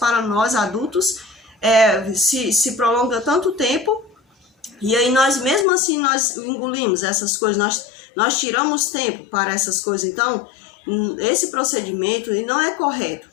nós adultos, se prolonga tanto tempo, e aí nós mesmo assim nós engolimos essas coisas, nós tiramos tempo para essas coisas. Então, esse procedimento não é correto.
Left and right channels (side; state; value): right; drops out; at 5.7 s